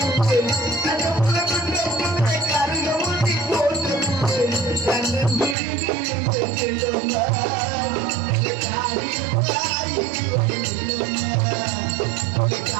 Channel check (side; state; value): left; drops out; at 5.6 s